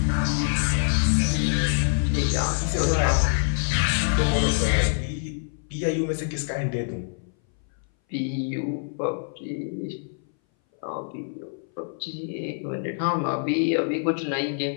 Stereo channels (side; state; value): right; silent; 59 dB below the other